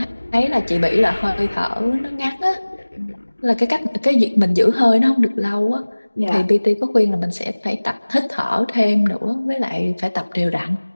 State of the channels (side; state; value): both; inverted; correlation -1.00